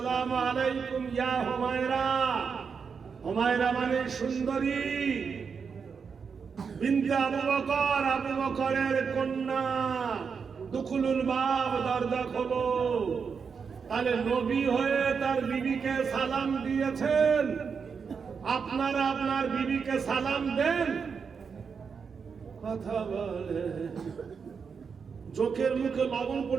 আলাইকুম ইয়া হুমায়রা। হুমায়রা মানে সুন্দরী, বিনতে আবু বকর, আবু বকরের কন্যা। দুখুলুল বাব, দরজা খোলো। তাহলে নবী হয়ে তার বিবিকে সালাম দিয়েছেন। আপনারা আপনার বিবিকে সালাম দেন? কথা বলে, চোখের মুখে লবণ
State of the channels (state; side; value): quieter; left; 5.9 dB